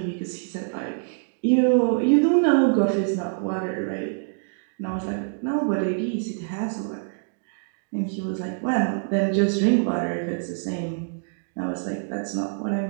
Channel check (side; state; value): left; silent; digital silence